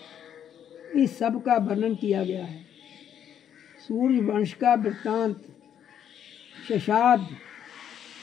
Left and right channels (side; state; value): right; quieter; 9.4 dB